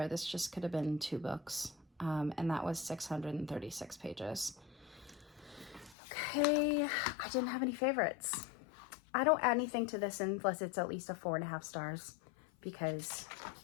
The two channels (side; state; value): right; drops out; at 6.0 s